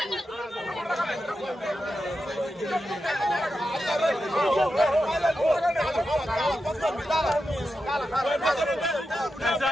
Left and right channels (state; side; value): normal; both; correlation 0.89